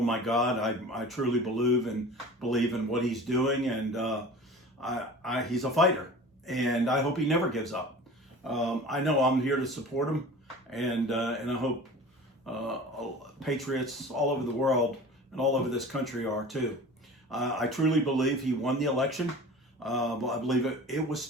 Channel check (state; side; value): normal; both; correlation 0.39